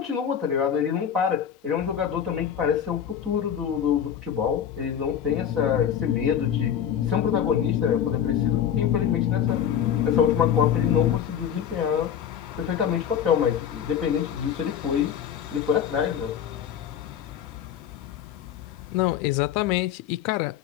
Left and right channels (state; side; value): quieter; right; 9.0 dB